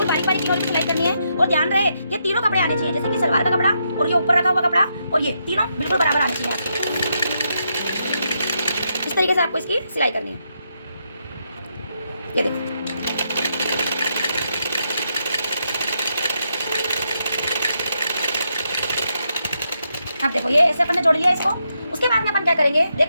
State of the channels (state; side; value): inverted; both; correlation -0.80